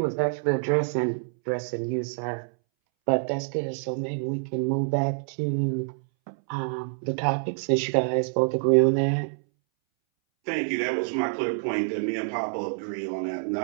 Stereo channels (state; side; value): silent; left; 60 dB below the other